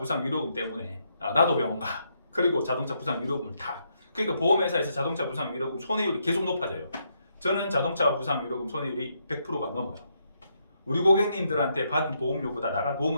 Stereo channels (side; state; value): both; inverted; correlation -0.77